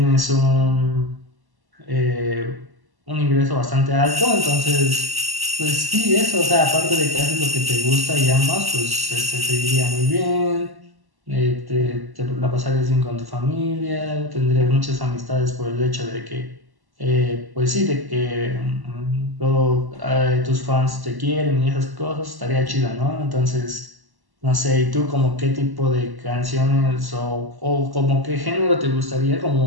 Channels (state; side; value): late; left; 1.1 ms